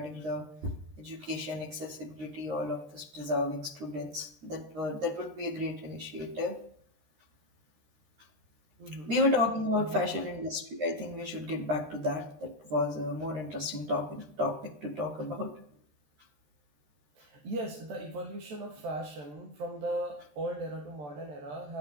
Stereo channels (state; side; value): late; left; 13 ms